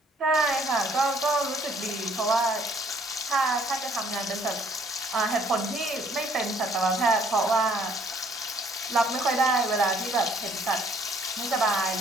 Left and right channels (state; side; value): normal; both; correlation 0.62